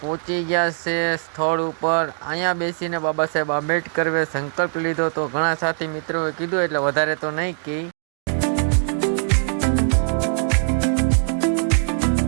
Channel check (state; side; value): silent; left; digital silence